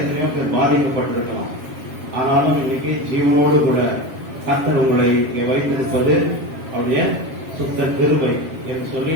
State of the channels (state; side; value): late; left; 7.4 ms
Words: பேர் பாதிக்கப்பட்டிருக்கலாம். ஆனாலும் இன்னைக்கு ஜீவனோடு கூட கர்த்தர் உங்களை இங்கே வைத்திருப்பது அவருடைய சுத்த கிருபை என்று